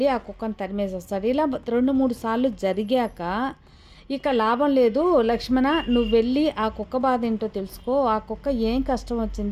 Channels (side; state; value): both; identical; correlation 1.00